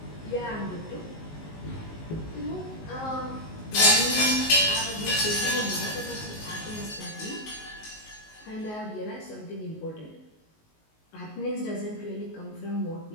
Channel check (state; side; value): late; right; 19 ms